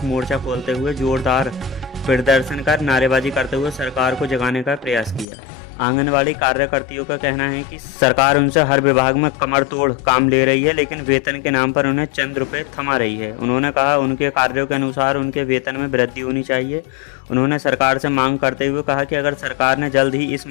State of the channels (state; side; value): drops out; right; at 5.2 s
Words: मोर्चा खोलते हुए जोरदार प्रदर्शन कर नारेबाजी करते हुए सरकार को जगाने का प्रयास किया। आंगनवाड़ी कार्यकर्तियों का कहना है कि सरकार उनसे हर विभाग में कमर तोड़ काम ले रही है, लेकिन वेतन के नाम पर उन्हें चंद रुपए थमा रही है। उन्होंने कहा उनके कार्यों के अनुसार उनके वेतन में वृद्धि होनी चाहिए। उन्होंने सरकार से मांग करते हुए कहा कि अगर सरकार ने जल्द ही इस